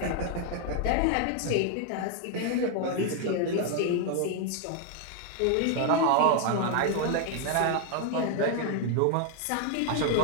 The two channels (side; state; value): both; different; correlation 0.01